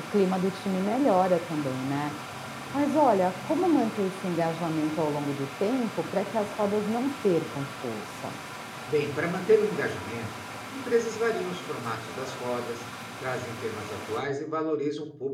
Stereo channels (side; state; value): both; identical; correlation 1.00